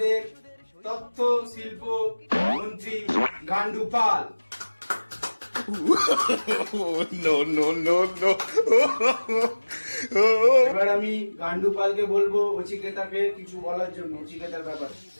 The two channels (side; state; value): both; inverted; correlation -1.00